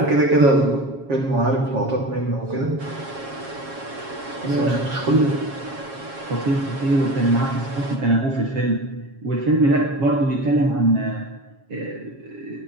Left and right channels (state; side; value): late; left; 7.3 ms